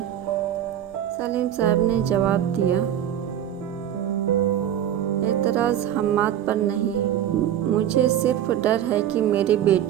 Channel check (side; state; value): left; quieter; 10.7 dB